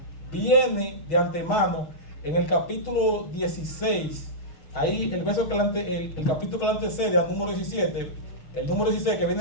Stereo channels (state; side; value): late; right; 6.2 ms